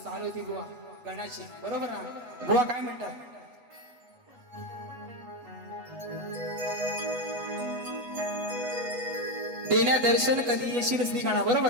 चाल होती बुवा गणाची, बरोबर ना. बुवा काय म्हणतात? देण्या दर्शन कधी येशील श्रीगणा,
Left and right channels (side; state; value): left; late; 8.2 ms